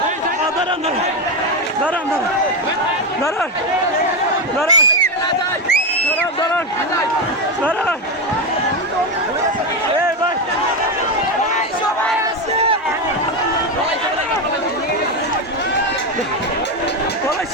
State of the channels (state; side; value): normal; both; correlation 0.11